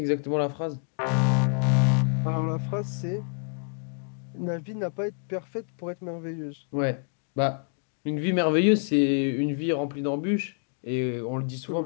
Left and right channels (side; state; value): right; silent; 60 dB below the other